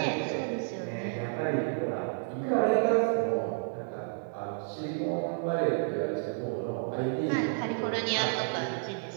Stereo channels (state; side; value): silent; left; digital silence